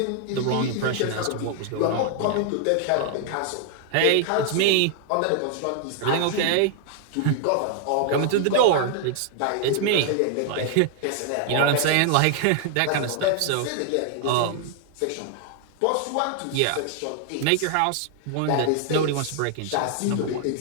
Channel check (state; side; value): different; both; correlation 0.00